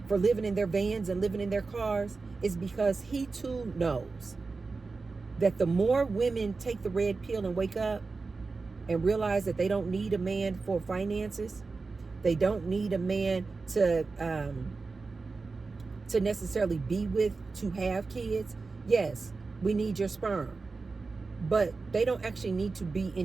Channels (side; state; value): left; quieter; 4.1 dB